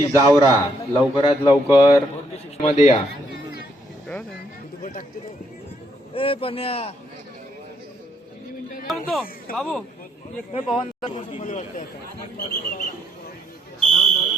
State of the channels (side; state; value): both; normal; correlation 0.73